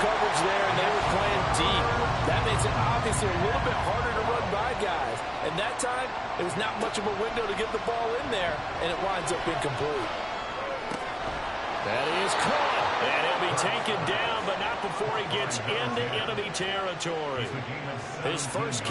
coverage there, and they were playing deep. That makes it obviously a little bit harder to run by guys. And that time, it was not much of a window to get the ball in there, and it winds up incomplete. That is caught. And he'll be taken down, but not before he gets into enemy territory. His first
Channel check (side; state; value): both; identical; correlation 1.00